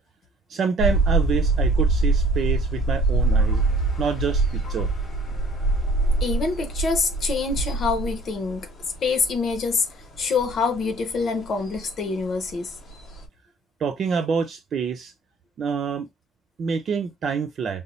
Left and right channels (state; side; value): normal; both; correlation 0.55